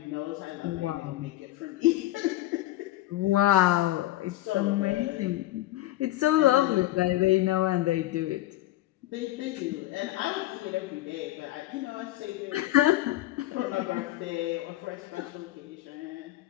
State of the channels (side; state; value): right; quieter; 16.1 dB